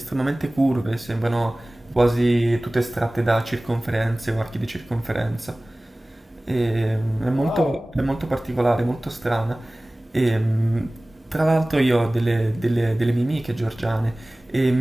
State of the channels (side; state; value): both; normal; correlation 0.98